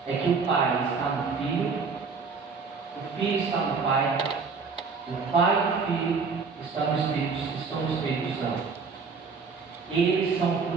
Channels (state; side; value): quieter; left; 5.0 dB